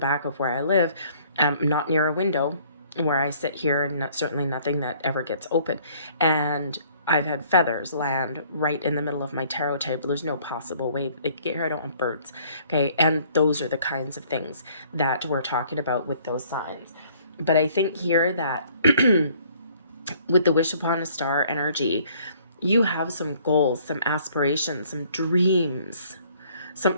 I live, not near a window where I sit here, and certainly nothing that ever gets open. And I've had feathers land right in the middle of my tarot table. There's no possible way they could get here. I don't want birds. Okay. And those are the kinds of things that we're talking about with those signs. But I think here that with the wish upon a star energy, you have some goals, some aspirations, some dreams,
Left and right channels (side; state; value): both; inverted; correlation -0.59